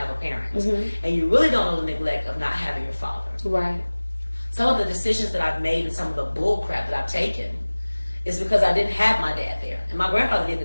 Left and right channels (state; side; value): inverted; both; correlation -1.00